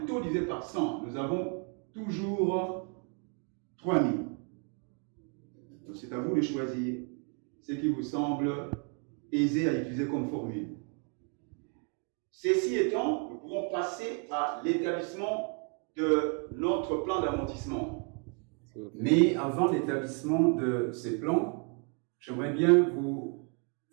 taux divisé par 100. Nous avons toujours 3000. Donc c'est à vous de choisir ce qui vous semble aisé à utiliser comme formule. Ceci étant, nous pouvons passer à l'établissement de notre plan d'amortissement. Mais avant l'établissement de ces plans, j'aimerais bien vous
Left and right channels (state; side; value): quieter; left; 38.1 dB